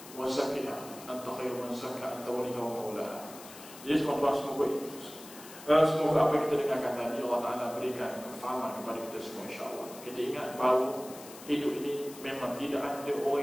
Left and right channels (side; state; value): left; noise; hiss, 16 dB below the sound